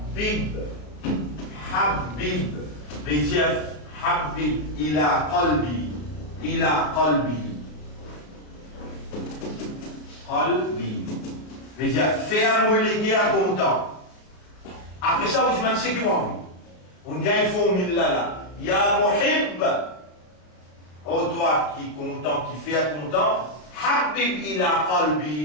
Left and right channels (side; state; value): right; late; 33 ms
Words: Habib, veut dire Habib ila qalbi, ila qalbi. Qalbi. Veut dire faire-moi les guerres content. Après ça, vous demandez c'est qui moi. On gagne formule là. Ya muhib. Oh toi qui est content, qui fait content. Habib ila